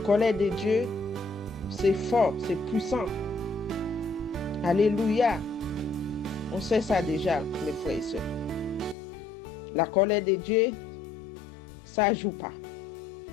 de Dieu, c'est fort, c'est puissant. Alléluia. On sait ça déjà, mes frères et sœurs. La colère de Dieu, ça ne joue pas.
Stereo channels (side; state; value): right; drops out; at 9.0 s